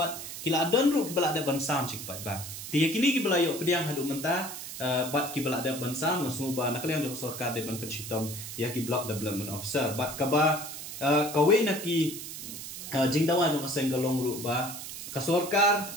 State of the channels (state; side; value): noise; right; hiss, 9 dB below the sound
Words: kila don ru ki bala ada ban sam sik pat ba ti ya kini ki bala yo pediang hadu menta bat ki bala ada ban sam masu ba nak liang jo sorkar de ban pensitom ya ki block development officer bat ka ba kawe na ki jingdawa jo ka sengalong ru ba ka sorkar